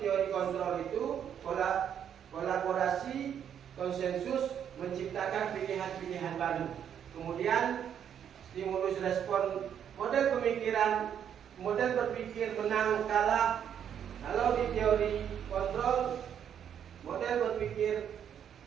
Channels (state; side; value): quieter; left; 8.9 dB